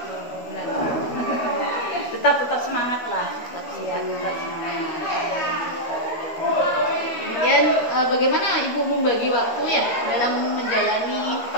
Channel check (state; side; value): late; right; 13 ms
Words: bulan. Tetap semangat lah. Tetap semangat. Kemudian bagaimana Ibu membagi waktu ya dalam menjalani